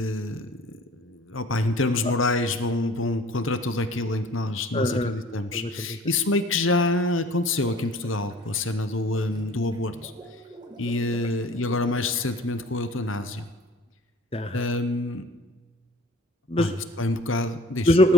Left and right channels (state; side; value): normal; both; correlation 0.48